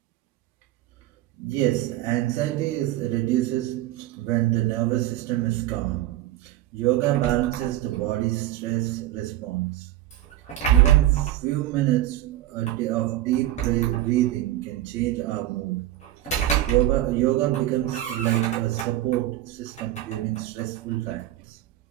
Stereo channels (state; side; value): quieter; left; 14.2 dB